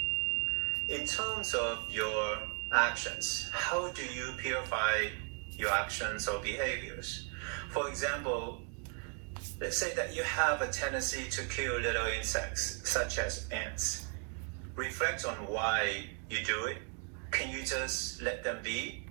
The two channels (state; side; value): quieter; left; 39.4 dB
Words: In terms of your actions, how do you purify your actions or behaviors? For example, let's say that you have a tendency to kill little insects, such as ants. Reflect on why you do it. Can you just let them be?